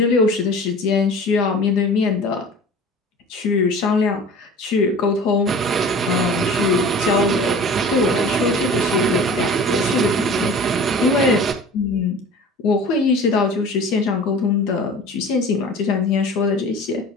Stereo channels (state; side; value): normal; both; correlation 0.40